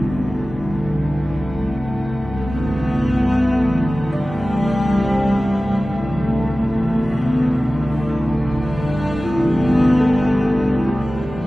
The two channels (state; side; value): normal; both; correlation 0.96